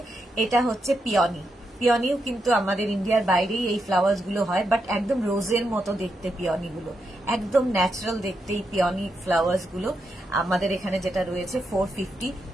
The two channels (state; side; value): normal; both; correlation 0.84